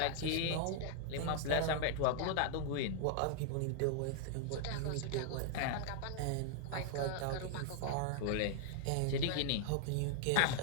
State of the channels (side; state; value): both; different; correlation 0.00